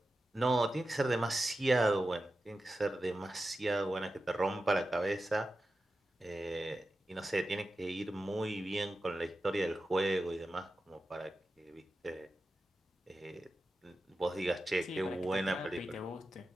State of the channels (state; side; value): normal; both; correlation 0.92